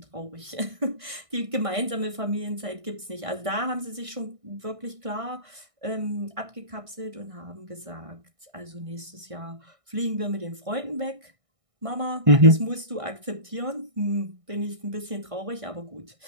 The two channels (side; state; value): left; late; 1.6 ms